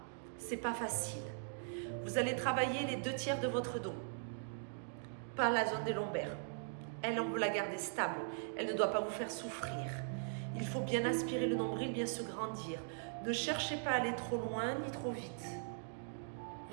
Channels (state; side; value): silent; left; digital silence